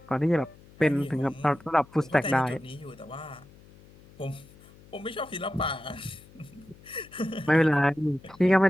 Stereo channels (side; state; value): left; noise; hum, 24 dB below the sound